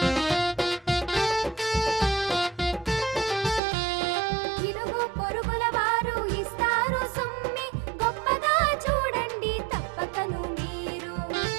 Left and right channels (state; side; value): drops out; left; at 3.6 s